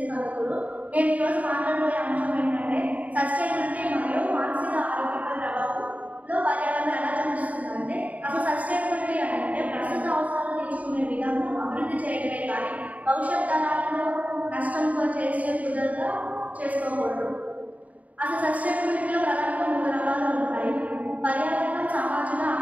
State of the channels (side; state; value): left; late; 0.071 ms